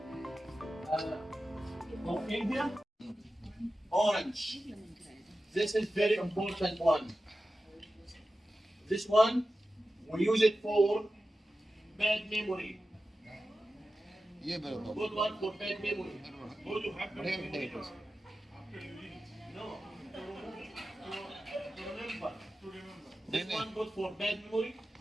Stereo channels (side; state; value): both; normal; correlation 0.93